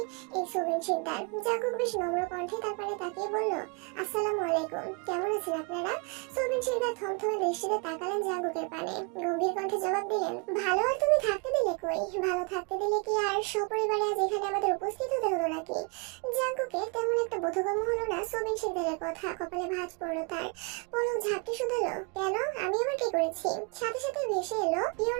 এই সোবেন শিকদার। জাঙ্কুক বেশ নম্র কণ্ঠে তার পানে তাকিয়ে বলল, আসসালামু আলাইকুম, কেমন আছেন আপনারা? সোবেন শিকদার থমথমে দৃষ্টিতে তাকালেন জাঙ্কুকের পানে। গম্ভীর কণ্ঠে জবাব দিলেন, ভালো। আর তুমি থাকতে দিলে কই? ভালো থাকতে দিলে কি আর সপরিবারে আজ এখানে আমাদের উপস্থিত হতে হলো নাকি? জাঙ্কুকের তেমন একটা বোধগম্য হলো না সোবেন শিকদারের কথা। কপালে ভাঁজ পড়লো তার। পলক ঝাপটে শুধালো, কেন? আমি আবার কি করেছি? সাথে সাথে ভেসে এলো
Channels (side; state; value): left; quieter; 33.2 dB